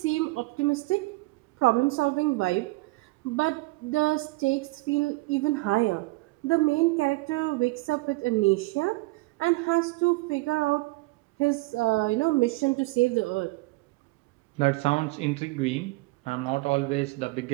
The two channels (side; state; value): left; quieter; 22.7 dB